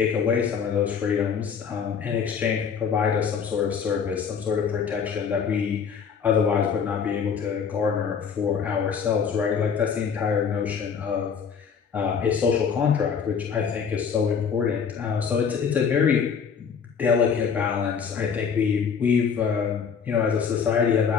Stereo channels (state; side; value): quieter; right; 6.7 dB